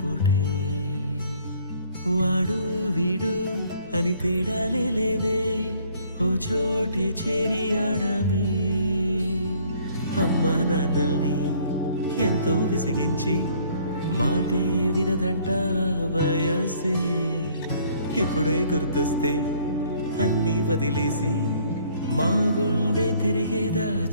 పూటే వాడు వీడు అని తేడాలే లేవే ఓ చోటే చేరి ఆడామే అమ్మా నాన్నల్ని ఎంతో విసిగించి మాటే వినదంట వయసే ఇప్పుడే గుర్తొస్తే అన్నీ వదిలేసి మా గుండె తిరిగేదా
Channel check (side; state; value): both; inverted; correlation -0.60